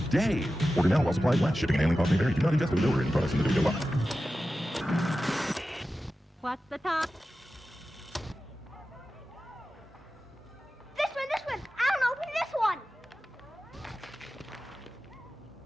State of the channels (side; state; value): both; normal; correlation 0.93